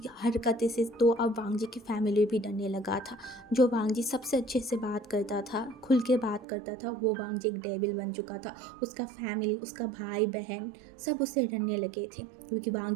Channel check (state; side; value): drops out; left; at 6.5 s